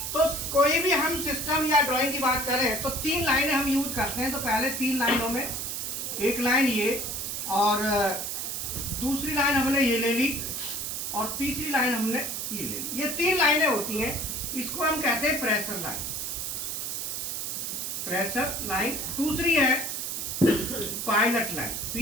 तो कोई भी हम सिस्टम या ड्राइंग की बात करें तो 3 लाइनें हम यूज करते हैं। तो पहले 3 लाइनों में एक लाइन ये, और दूसरी लाइन हमने ये ले ली, और तीसरी लाइन हमने ये ले ली। ये 3 लाइनें होती हैं, इसको हम कहते हैं प्रेशर लाइन। Pressure line. दूसरी है pilot line,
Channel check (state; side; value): noise; right; hiss, 3 dB below the sound